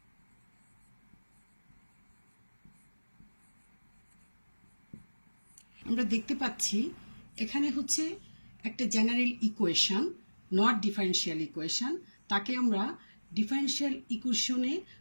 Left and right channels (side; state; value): both; inverted; correlation -1.00